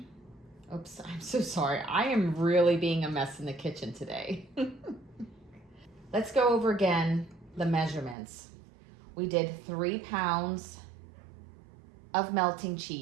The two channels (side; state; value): left; drops out; at 8.2 s